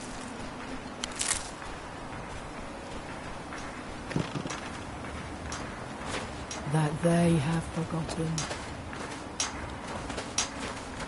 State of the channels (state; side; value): identical; both; correlation 1.00